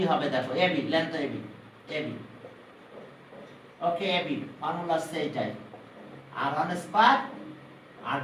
হবে দেখো, এবি লেন্থ এবি ওকে, এবি ফর্মুলা আছে এইটাই, r1 square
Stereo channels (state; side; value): identical; both; correlation 1.00